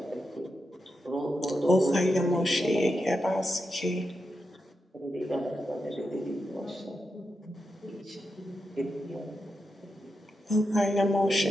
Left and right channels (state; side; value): normal; both; correlation 0.87